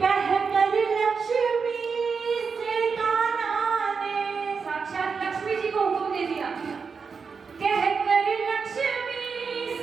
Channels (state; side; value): quieter; left; 5.4 dB